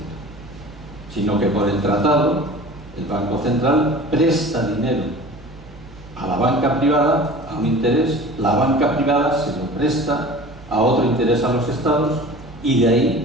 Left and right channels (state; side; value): noise; right; hum, 23 dB below the sound